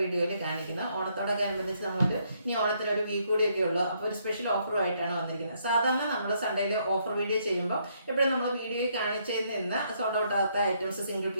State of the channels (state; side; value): inverted; both; correlation -0.72